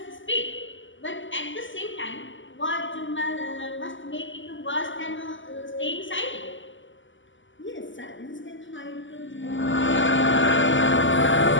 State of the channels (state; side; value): late; right; 0.55 ms